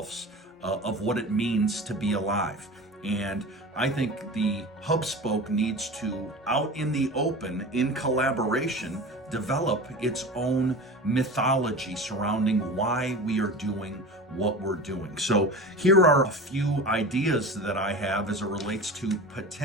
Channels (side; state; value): both; normal; correlation 0.33